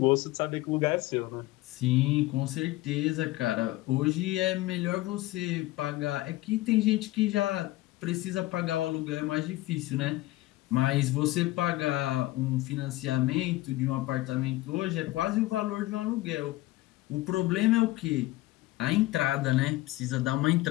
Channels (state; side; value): quieter; right; 18.2 dB